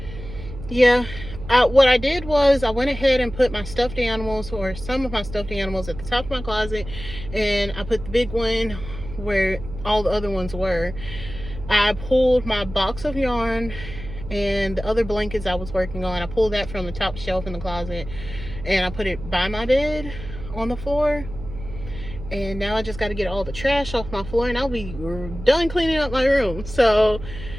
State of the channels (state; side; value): noise; right; hum, 12 dB below the sound